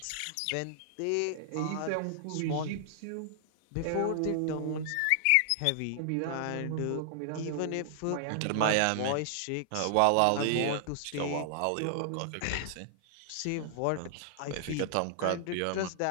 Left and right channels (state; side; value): different; both; correlation -0.01